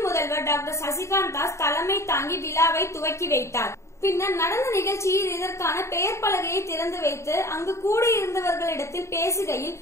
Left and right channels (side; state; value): right; late; 0.14 ms